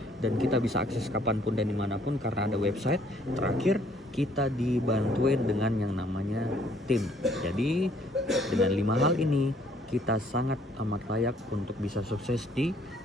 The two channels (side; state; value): both; normal; correlation 0.63